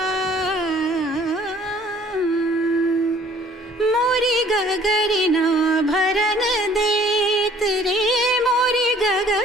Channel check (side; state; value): both; normal; correlation 0.56